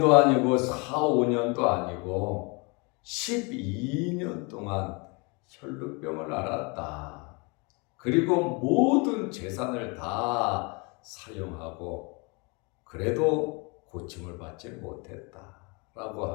아니고 4, 5년도 아니고 12년 동안 혈루병을 앓았다. 그리고 모든 재산을 다 사용하고 그래도 고침을 받지 못했다라고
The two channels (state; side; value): quieter; right; 30.4 dB